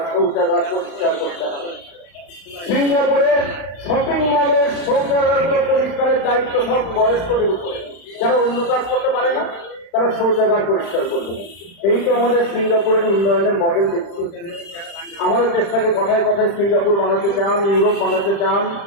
শৌচাগার পরিষ্কার করতে হবে। সিঙ্গাপুরের শপিং মলের শৌচাগারগুলো পরিষ্কারের দায়িত্ব সব বয়স্কদের উপরে, যারা অন্য কাজ করতে পারে না তারা শৌচাগার পরিষ্কার করবে। এই তো আমাদের সিঙ্গাপুরের উন্নয়নের মডেল দেখছি। আমাদের দেশটাকে কথায় কথায় সিঙ্গাপুর বানাতে চান, ইউরোপ বানাতে চান।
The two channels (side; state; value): right; late; 35 ms